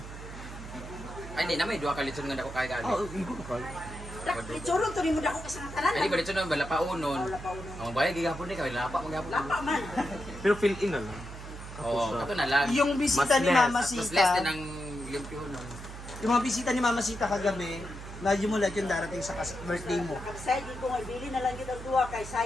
Ay, hindi na may duha ka litson nga dako kay gali. Igo ka. Itsurong to rin mo na ako kasangatalan. Ay, di ba litson na bala pa unon. Wala pa uno. Ang bayad gigapon ni kay lapa mo gapon. Lapa man. Pero fill in na lang. Oo, kato na lang. Yung bisita Mas ni less. Mama Mas less Sita, din ang limpyo nun. yung mga bisita ni Mama Sita kagabi, medyo mo lahat yung darating sa birthday mo. Kapsay, di ko nga ibili na lang yun ang duwa kay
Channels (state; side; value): noise; right; hum, 11 dB below the sound